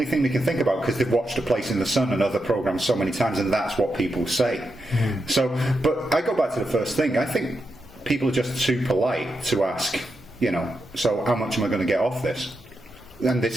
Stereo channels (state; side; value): normal; both; correlation 0.86